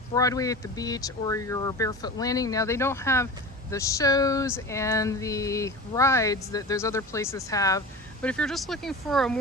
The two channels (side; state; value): both; normal; correlation 0.32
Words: Broadway at the beach or your Barefoot Landing. Now they don't have the shows and the rides that those other places have. But if you're just looking for a